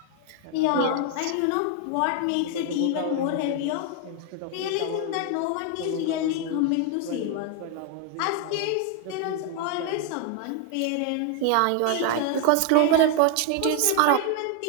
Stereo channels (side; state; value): both; different; correlation 0.01